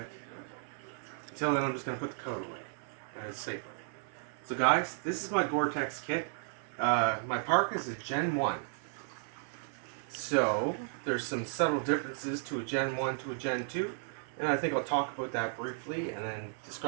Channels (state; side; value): silent; left; 55 dB below the other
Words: Until then, I'm just gonna put the coat away, and it's safer. So, guys, this is my Gore-Tex kit. My parka is a Gen 1. So, there's some subtle differences to a Gen 1 to a Gen 2, and I think I'll talk about that briefly and then